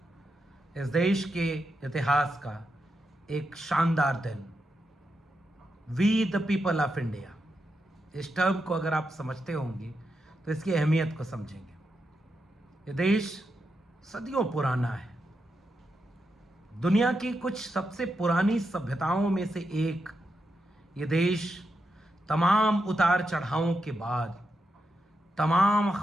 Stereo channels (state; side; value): normal; both; correlation 0.86